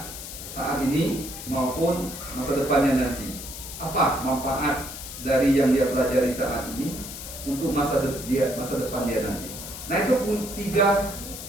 saat ini maupun masa depannya nanti. Apa manfaat dari yang dia pelajari saat ini untuk masa depan dia nanti. Nah itu pun tiga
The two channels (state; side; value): noise; left; hiss, 10 dB below the sound